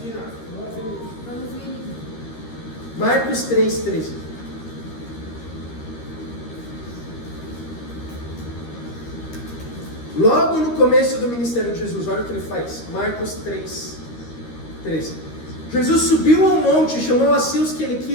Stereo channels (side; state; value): right; late; 13 ms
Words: Marcos 3,13. Logo no começo do ministério de Jesus, olha o que ele faz. Marcos 3,13. Jesus subiu ao monte e chamou a si os que ele